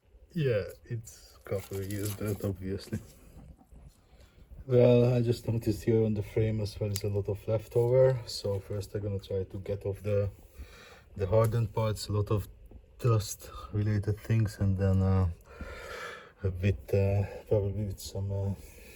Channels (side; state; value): both; identical; correlation 1.00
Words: Yeah, it's a couple of years dirt, obviously. Well, I just noticed here on the frame as well is a lot of leftover. So first I'm gonna try to get off the hardened parts, a lot of dust related things, and then a bit probably with some